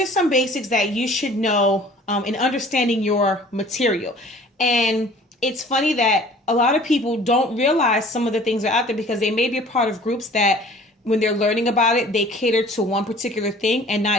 some basics that you should know in understanding your material. And it's funny that a lot of people don't realize some of the things are out there because they may be a part of groups that when they're learning about it, they cater to one particular thing and not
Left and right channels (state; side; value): normal; both; correlation 0.49